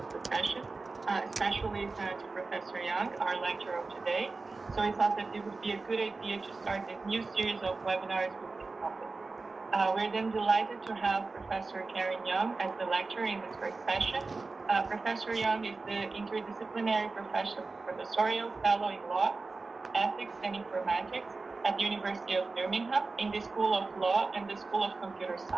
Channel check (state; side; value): quieter; left; 3.8 dB